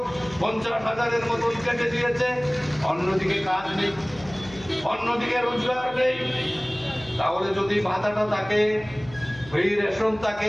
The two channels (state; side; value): noise; left; hum, 19 dB below the sound